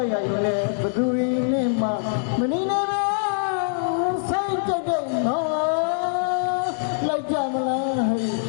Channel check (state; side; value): silent; right; digital silence